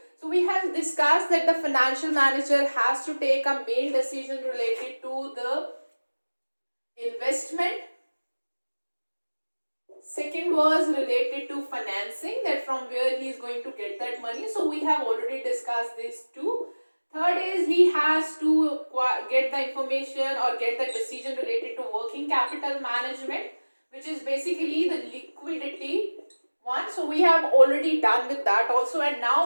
So we have discussed that the financial manager has to take a main decision related to the investment. Second was related to financing, that from where he is going to get that money. So we have already discussed these two. Third is he has to get the information or get the decision related to working capital management, which is basically the liquidity one. So we have already done with that also, and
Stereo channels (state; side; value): inverted; both; correlation -1.00